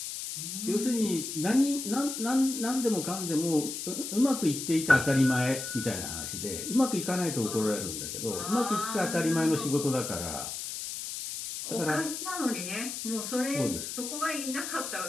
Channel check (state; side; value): noise; left; hiss, 6 dB below the sound